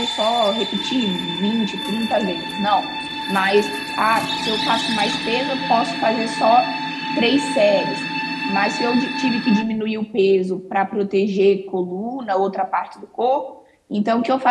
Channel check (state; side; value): identical; both; correlation 1.00